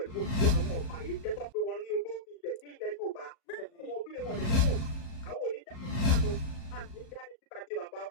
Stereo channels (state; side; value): late; right; 38 ms